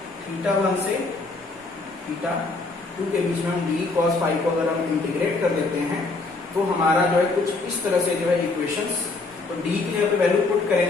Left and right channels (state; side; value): quieter; right; 3.6 dB